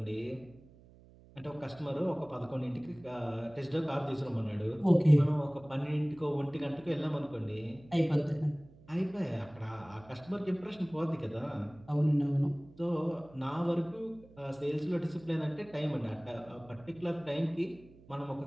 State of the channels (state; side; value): noise; right; hum, 23 dB below the sound